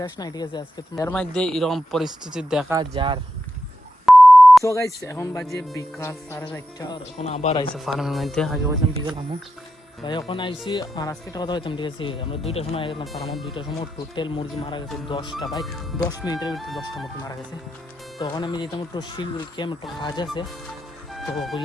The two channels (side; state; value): both; normal; correlation 0.88